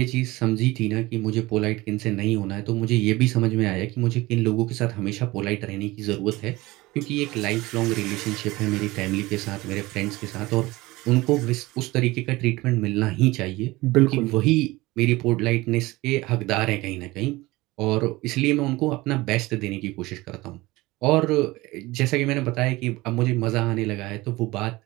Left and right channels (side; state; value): left; quieter; 20.3 dB